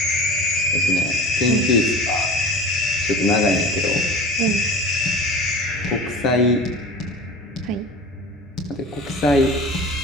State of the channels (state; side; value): normal; both; correlation 0.37